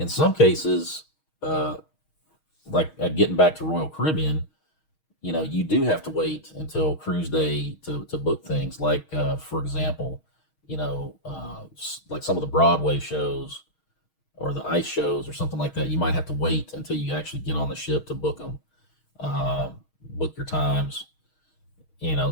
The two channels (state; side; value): late; right; 6.4 ms